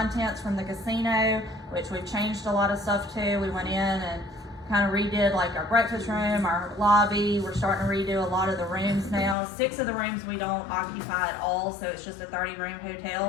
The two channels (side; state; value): right; drops out; at 9.3 s